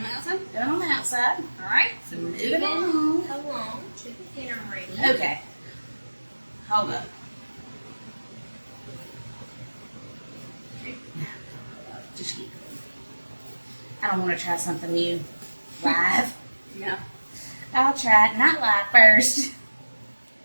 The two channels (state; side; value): inverted; both; correlation -1.00